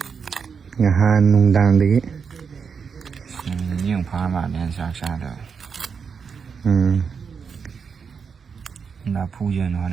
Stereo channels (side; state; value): left; quieter; 6.1 dB